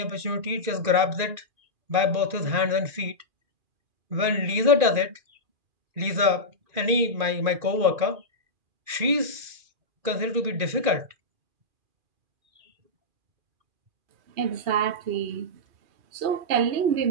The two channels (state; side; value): late; left; 2.4 ms